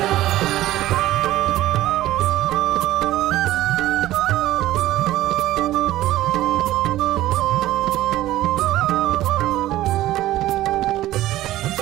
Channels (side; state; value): left; quieter; 15.0 dB